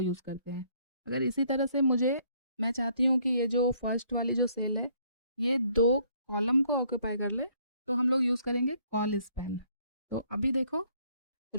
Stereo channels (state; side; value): inverted; both; correlation -0.65